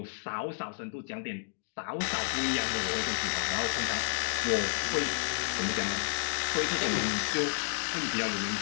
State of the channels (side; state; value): right; silent; digital silence